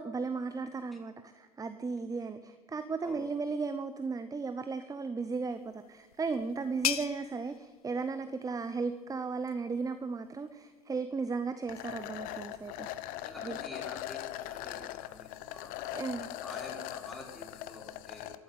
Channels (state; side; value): normal; both; correlation 0.62